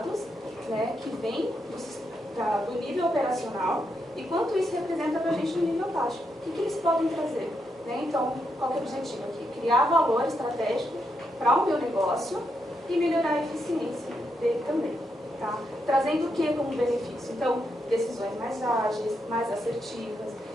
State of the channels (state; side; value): normal; both; correlation 0.81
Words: né, que vêm do nível operacional e quanto isso representa para a gente no nível tático. O que eles podem trazer? Né? Então, qual que é o objetivo aqui? Criar valor estratégico para o meu negócio e melhorar a eficiência dele também. Tá? Trazendo o que como benefício? Então, decisões mais ágeis, mais assertivas,